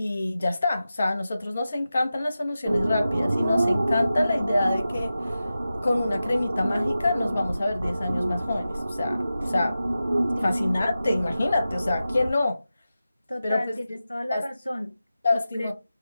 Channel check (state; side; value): inverted; both; correlation -0.93